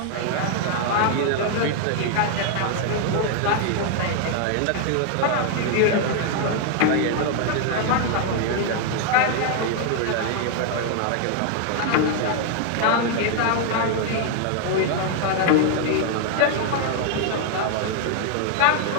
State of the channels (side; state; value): both; different; correlation 0.00